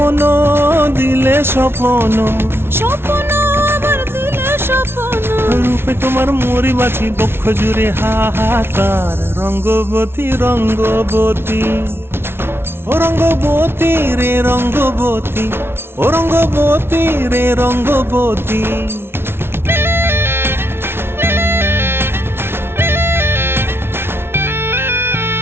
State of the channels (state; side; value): late; left; 0.12 ms